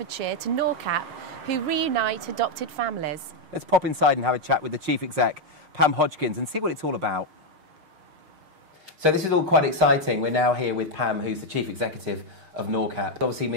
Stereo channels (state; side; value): late; left; 6.5 ms